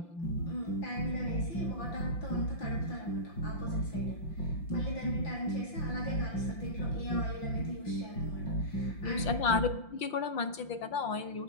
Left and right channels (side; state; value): right; late; 5.8 ms